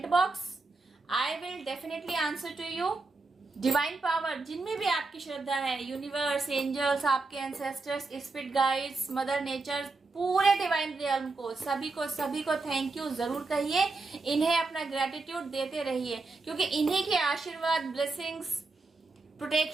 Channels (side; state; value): left; quieter; 3.7 dB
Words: box. I will definitely answer to you. Divine power जिनमें भी आपकी श्रद्धा है, यूनिवर्स, एंजल्स, आपके ancestors, spirit guides, mother nature, पूरे डिवाइन रियल्म को सभी को थैंक यू जरूर कहिए। इन्हें अपना ग्रेटिट्यूड देते रहिए, क्योंकि इन्हीं के आशीर्वाद, ब्लेसिंग्स,